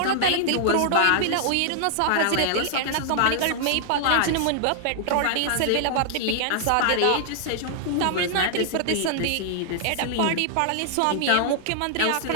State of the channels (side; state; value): both; different; correlation -0.01